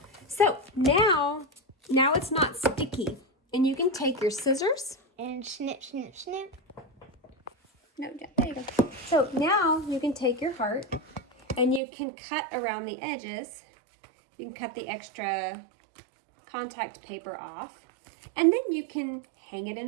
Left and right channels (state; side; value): drops out; left; at 11.8 s